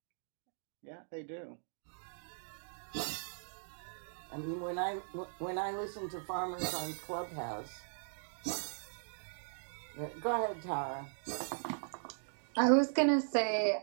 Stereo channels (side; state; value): left; silent; digital silence